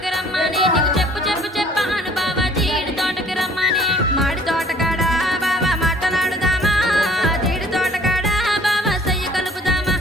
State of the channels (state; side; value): normal; both; correlation 0.55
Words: రమ్మని నీకు చెప్పాను బావా జీడి తోటకు రమ్మని మాడి తోటకాడ బావా మాటలాడుదామా జీడి తోటకాడ బావా సయ్య కలుపుదామా